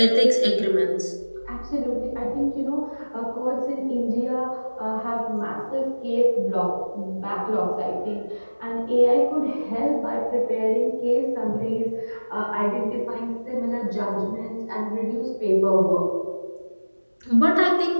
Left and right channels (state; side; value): inverted; both; correlation -1.00